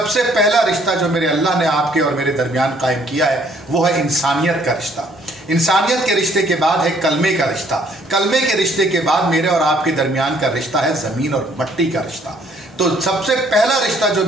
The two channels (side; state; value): both; normal; correlation 0.63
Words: पहला रिश्ता जो मेरे अल्लाह ने आपके और मेरे दरमियान कायम किया है वो है इंसानियत का रिश्ता। इंसानियत के रिश्ते के बाद है कलमे का रिश्ता, कलमे के रिश्ते के बाद मेरे और आपके दरमियान का रिश्ता है ज़मीन और मिट्टी का रिश्ता। तो सबसे पहला रिश्ता जो